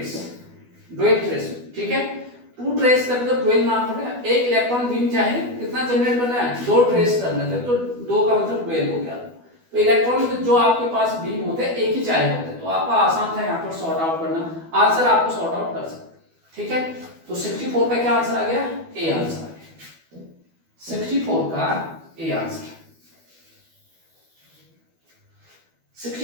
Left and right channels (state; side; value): late; left; 12 ms